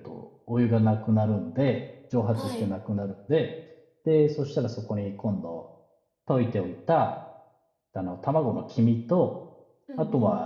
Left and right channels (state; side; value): identical; both; correlation 1.00